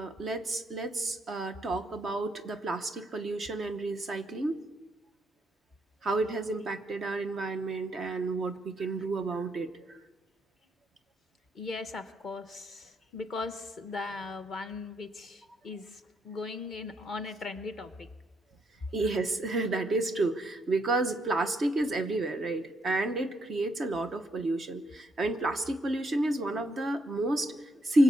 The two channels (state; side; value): normal; both; correlation 0.75